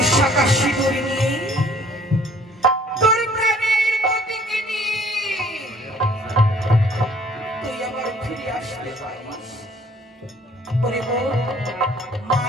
শাঁখা সিঁদুর নিয়ে তোর প্রাণের পতিকে নিয়ে তুই আবার ফিরে আসতে পারিস। ওরে বোন, মা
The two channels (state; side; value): normal; both; correlation 0.57